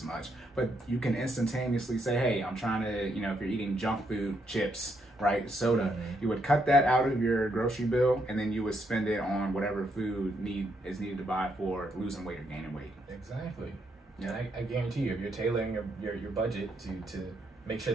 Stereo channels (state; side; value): normal; both; correlation 0.76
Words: much. But you can instantaneously say, hey, I'm trying to, if you're eating junk food, chips, right, soda, you would cut that out of your grocery bill, and then you would spend it on whatever food is needed to buy for losing weight or gaining weight. Exactly. Yeah, I guarantee you, if you're tailoring your budget to make sure